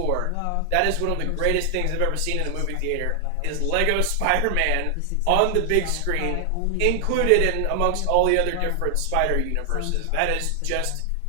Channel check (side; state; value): both; different; correlation 0.00